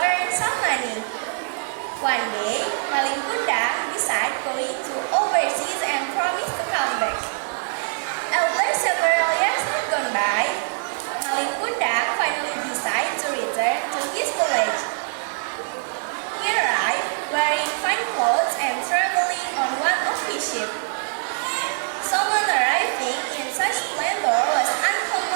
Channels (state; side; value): silent; left; digital silence